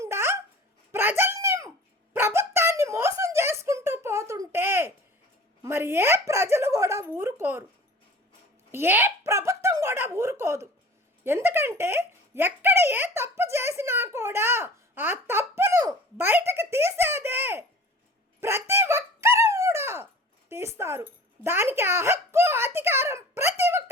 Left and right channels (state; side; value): normal; both; correlation 0.42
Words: ప్రజల్ని ప్రభుత్వాన్ని మోసం చేసుకుంటూ పోతుంటే మరి ఏ ప్రజలు కూడా ఊరుకోరు, ఏ ప్రభుత్వం కూడా ఊరుకోదు. ఎందుకంటే ఎక్కడ ఏ తప్పు చేసినా కూడా ఆ తప్పును బయటకు తీసేదే ప్రతి ఒక్కరూ కూడా తీస్తారు. దానికి ఆ హక్కు అధికారం ప్రతి ఒక్క